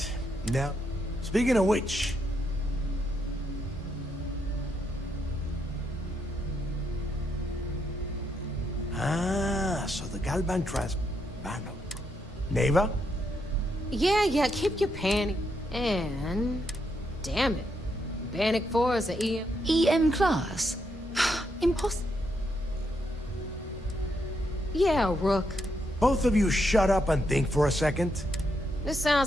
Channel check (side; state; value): both; normal; correlation 0.79